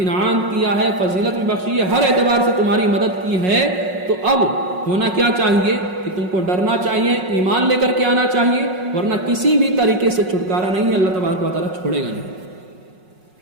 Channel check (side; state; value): left; late; 5.5 ms